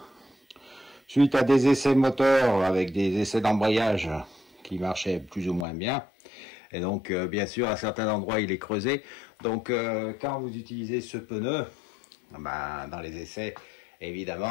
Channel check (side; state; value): right; drops out; at 5.7 s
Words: suite à des essais moteurs avec des essais d'embrayage qui marchaient plus ou moins bien. Et donc bien sûr à certains endroits il est creusé. Donc quand vous utilisez ce pneu, bah, dans les essais,